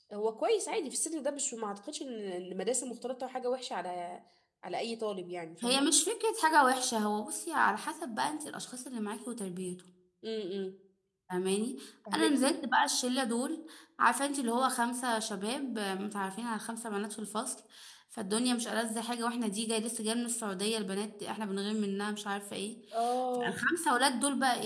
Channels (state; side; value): identical; both; correlation 1.00